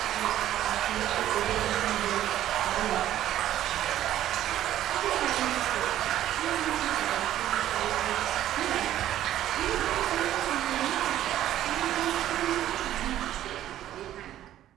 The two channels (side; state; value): left; quieter; 12.5 dB